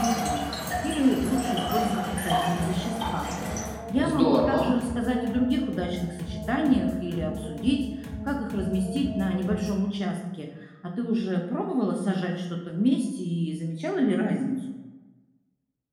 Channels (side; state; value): both; identical; correlation 1.00